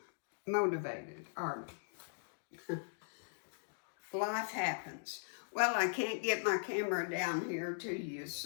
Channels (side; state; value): right; silent; digital silence